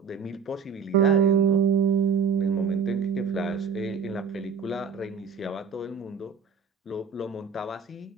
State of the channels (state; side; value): quieter; left; 6.2 dB